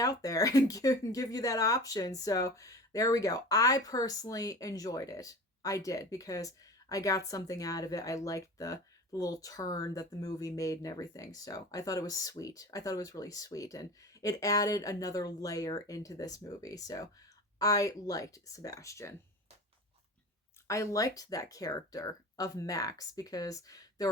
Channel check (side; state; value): both; normal; correlation 0.35